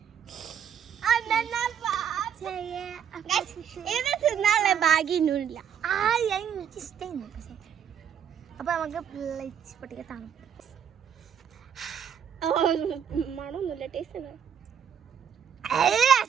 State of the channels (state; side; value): quieter; left; 8.5 dB